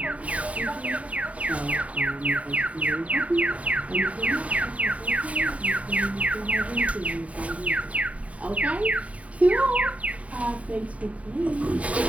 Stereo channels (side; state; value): left; late; 0.067 ms